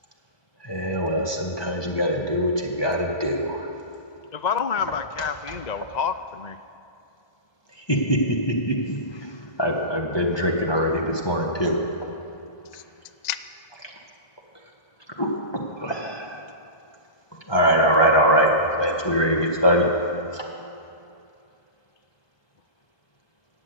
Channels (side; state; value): right; late; 1.2 ms